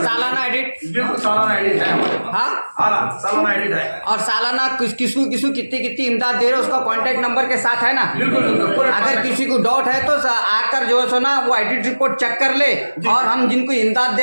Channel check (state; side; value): inverted; both; correlation -1.00